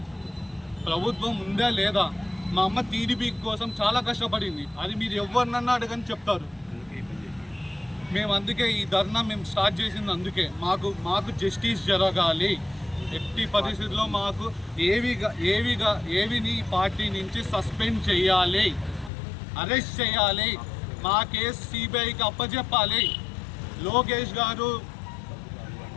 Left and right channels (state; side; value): drops out; right; at 19.1 s